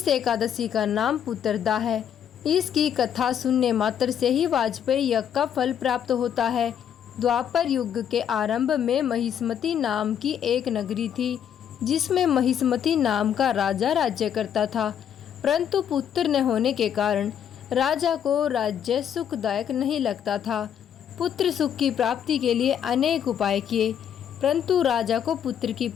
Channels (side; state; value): right; quieter; 9.1 dB